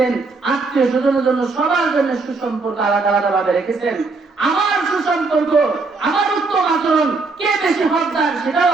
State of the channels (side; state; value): left; quieter; 3.9 dB